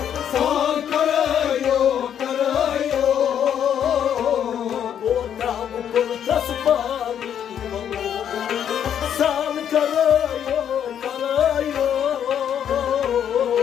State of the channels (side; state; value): right; quieter; 9.2 dB